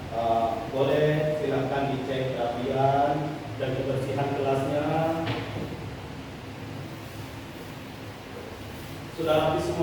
Boleh silakan dicek kerapian dan kebersihan kelasnya. Sudah rapi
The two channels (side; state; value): both; identical; correlation 1.00